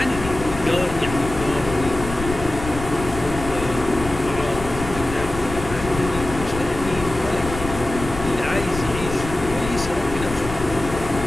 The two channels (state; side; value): noise; left; rumble, 9 dB below the sound